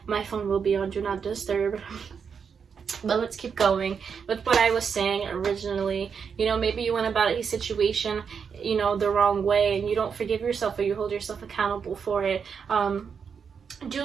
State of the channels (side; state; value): left; quieter; 6.5 dB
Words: my phone will be on Do Not Disturb. But let's keep going with what I was saying originally. You know, maybe you went about a situation, you know, the wrong way and you don't forgive yourself or you hold yourself accountable for it. Do